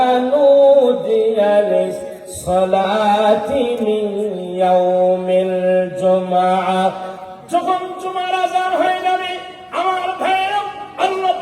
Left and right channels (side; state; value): both; identical; correlation 1.00